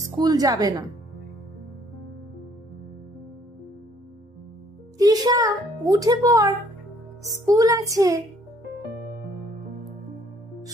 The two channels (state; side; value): normal; both; correlation 0.62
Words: স্কুল যাবে না। তৃষা উঠে পড়, স্কুল আছে।